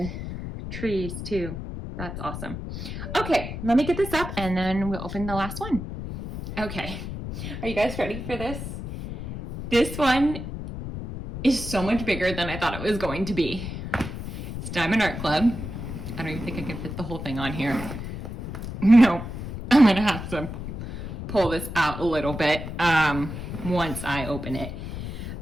trees too. That's awesome. Okay, let me get this up and then we'll open the last one. Okay, are you guys ready for this? This one is so much bigger than I thought it was going to be. It's Diamond Art Club. I don't even think I can fit the whole thing on here. No, I'm gonna have to pull this out a little bit once I open it.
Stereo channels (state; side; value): noise; left; rumble, 7 dB below the sound